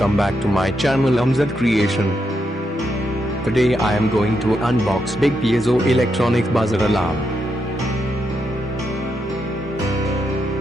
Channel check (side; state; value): both; normal; correlation 0.82